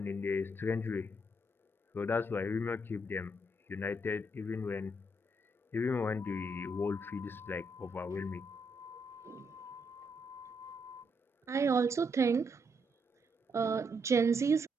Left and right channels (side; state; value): both; normal; correlation 0.77